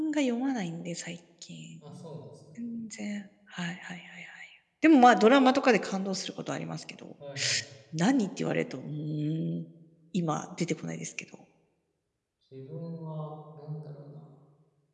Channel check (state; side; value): identical; both; correlation 1.00